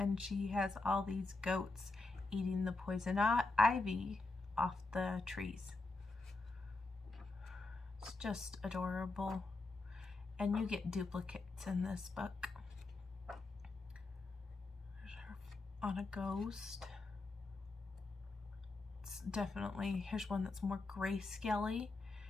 she has all these goats eating the poison ivy off the trees. It's just adorable, and you get duplicates in this book. There's her on a ghost. It's definitely, here's one that's more grayscale-y.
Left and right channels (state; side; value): quieter; right; 3.4 dB